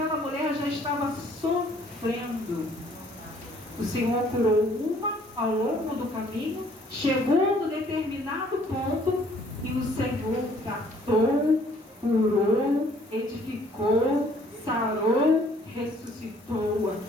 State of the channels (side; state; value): both; normal; correlation 0.60